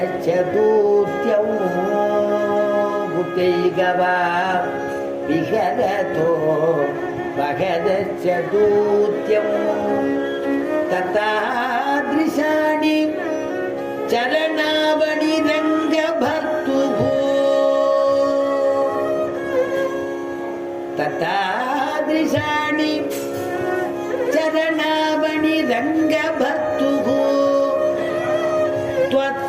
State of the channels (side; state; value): both; identical; correlation 1.00